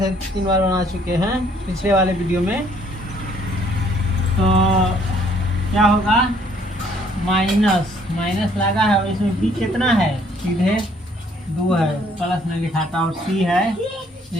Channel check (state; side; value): normal; both; correlation 0.63